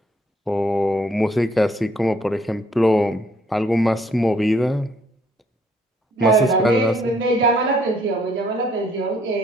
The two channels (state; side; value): normal; both; correlation 0.66